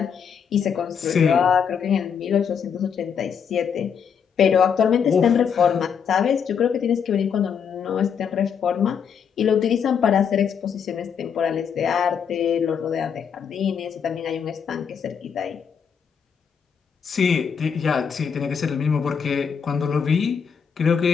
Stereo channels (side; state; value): right; quieter; 7.1 dB